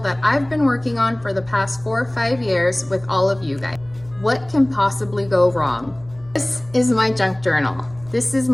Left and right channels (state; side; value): noise; right; rumble, 25 dB below the sound